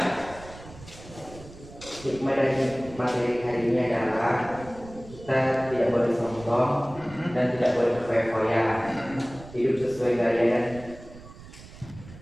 Hikmah dari materi hari ini adalah kita tidak boleh sombong dan tidak boleh berfoya-foya. Hidup sesuai gaya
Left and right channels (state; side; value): noise; right; rumble, 18 dB below the sound